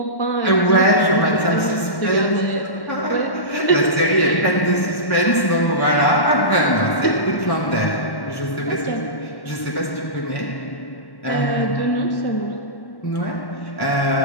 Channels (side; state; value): right; late; 1.1 ms